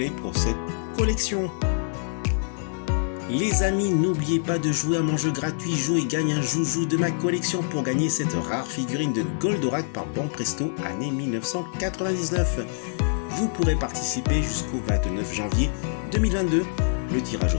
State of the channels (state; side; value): silent; right; digital silence